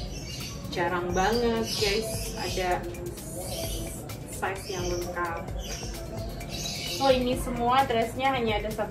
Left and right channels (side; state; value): both; identical; correlation 1.00